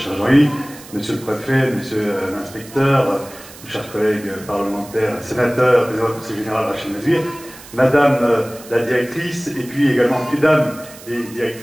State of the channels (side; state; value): right; noise; hiss, 19 dB below the sound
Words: Jean-Yves, monsieur le préfet, monsieur l'inspecteur, chers collègues parlementaires, sénateurs, président du conseil général Rachel Mazir, madame la directrice, et puis également mesdames les